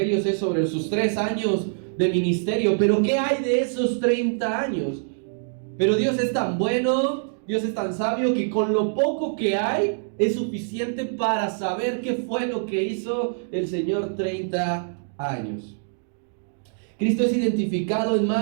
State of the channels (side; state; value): left; silent; digital silence